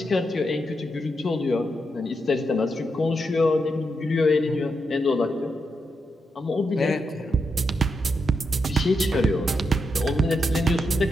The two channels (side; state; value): both; normal; correlation 0.84